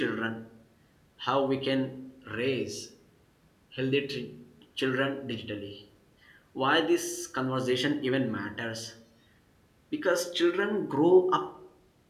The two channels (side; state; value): both; identical; correlation 1.00